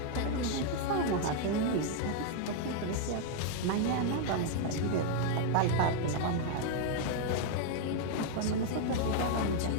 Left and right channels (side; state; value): both; different; correlation 0.00